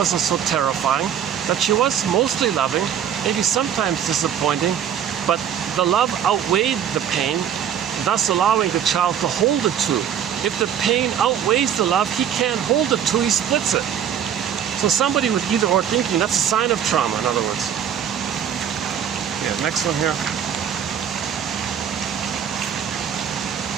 so terrifying, that she was mostly loving, maybe sometimes disappointing, but the love outweighed the pain, thus allowing the child to hold the 2. If the pain outweighs the love, he can't hold the 2, he splits it. So somebody with either or thinking, that's a sign of trauma, in other words. Yeah, next one here.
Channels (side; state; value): left; quieter; 8.8 dB